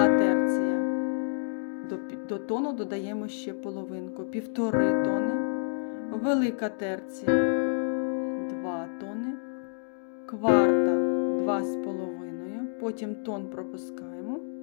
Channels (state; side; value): silent; right; digital silence